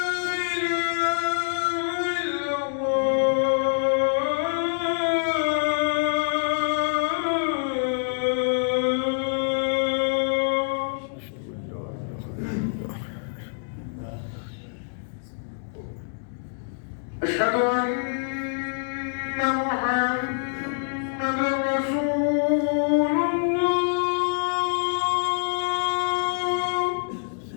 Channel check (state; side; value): silent; right; digital silence